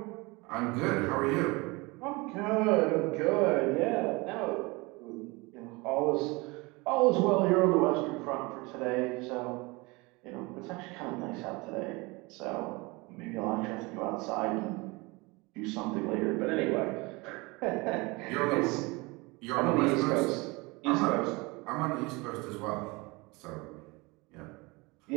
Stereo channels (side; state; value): left; quieter; 25.1 dB